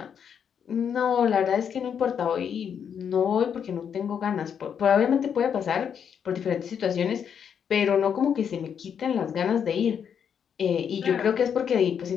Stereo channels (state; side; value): quieter; right; 7.7 dB